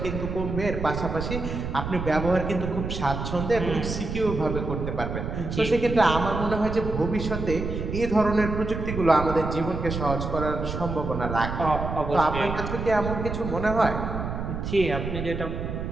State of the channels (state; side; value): noise; right; rumble, 5 dB below the sound